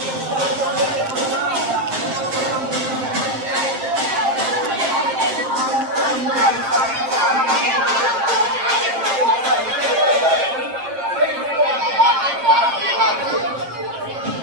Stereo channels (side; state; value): left; late; 7.6 ms